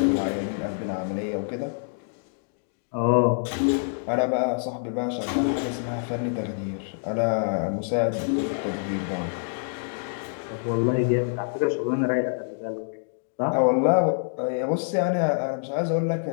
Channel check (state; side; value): silent; right; digital silence